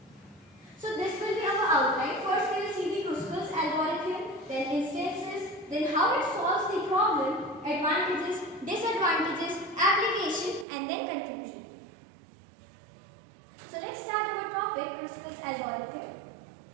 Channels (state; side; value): drops out; left; at 10.7 s